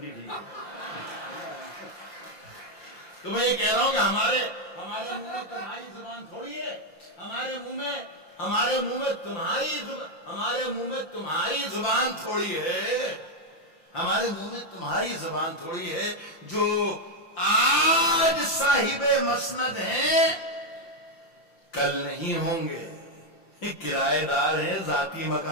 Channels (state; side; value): late; right; 5.8 ms